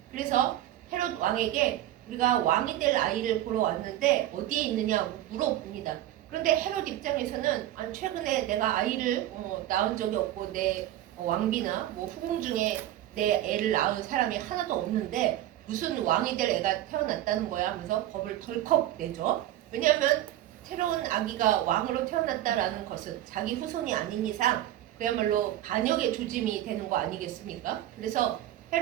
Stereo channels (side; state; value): left; quieter; 13.5 dB